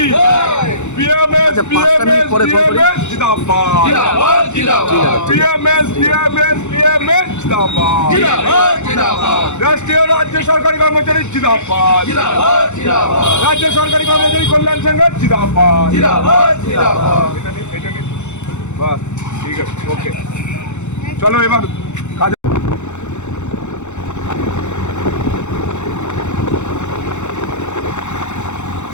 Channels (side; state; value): right; late; 0.83 ms